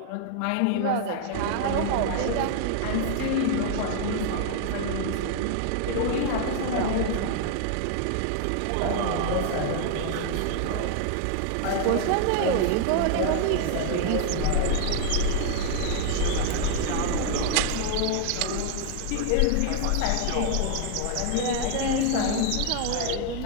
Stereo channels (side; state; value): both; different; correlation 0.00